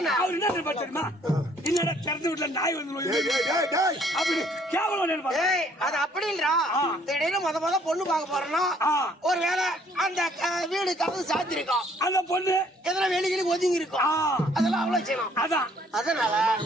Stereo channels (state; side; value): normal; both; correlation 0.62